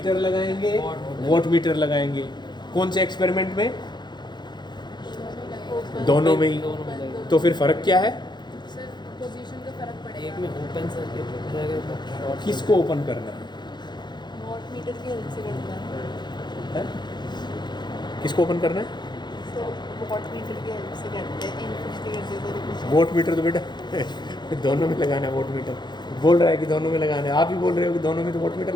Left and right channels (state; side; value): late; right; 0.21 ms